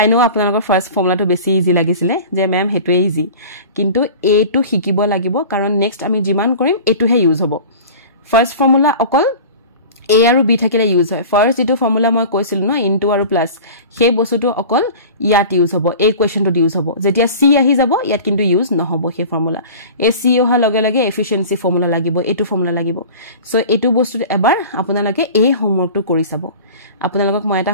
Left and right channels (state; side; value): inverted; both; correlation -0.38